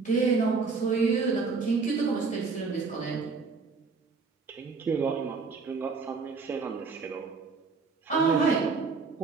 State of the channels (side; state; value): left; quieter; 4.6 dB